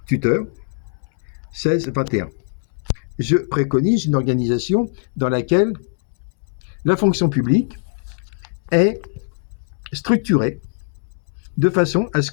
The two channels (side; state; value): right; silent; digital silence